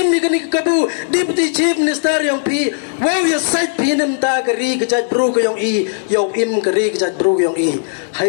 ni kani kabu deputy chief minister yang pi wow ya site pi nem ta kari ke jaj bru ke yang i yo im kari ke jaj bru yang i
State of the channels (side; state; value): right; silent; digital silence